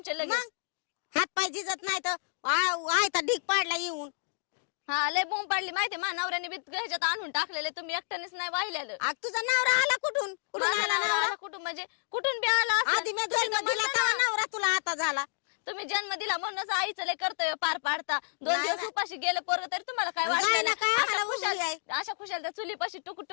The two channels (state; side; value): silent; right; digital silence